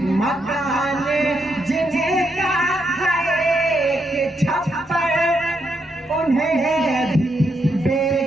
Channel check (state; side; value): normal; both; correlation 0.79